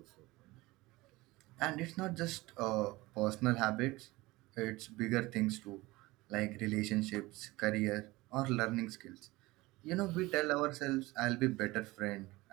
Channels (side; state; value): left; quieter; 20.5 dB